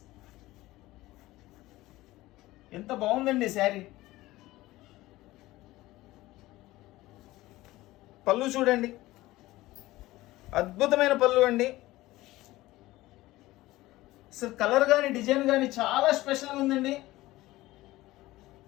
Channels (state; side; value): quieter; right; 17.8 dB